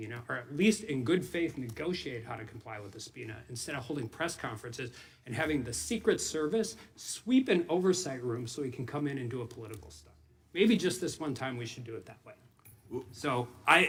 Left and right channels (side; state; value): both; identical; correlation 1.00